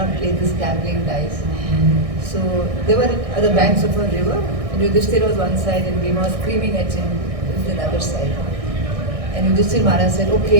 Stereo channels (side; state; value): left; late; 1.6 ms